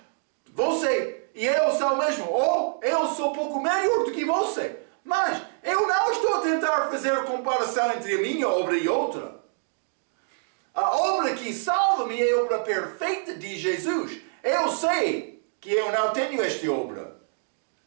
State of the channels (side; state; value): left; silent; digital silence